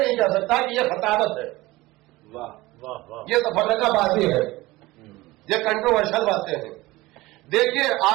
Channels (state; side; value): quieter; left; 19.7 dB